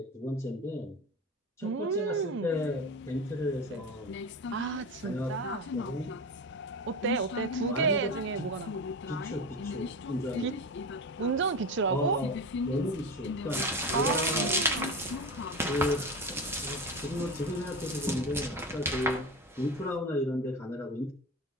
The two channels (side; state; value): both; normal; correlation 0.24